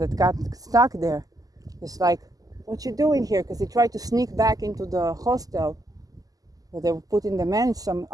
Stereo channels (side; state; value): left; late; 0.17 ms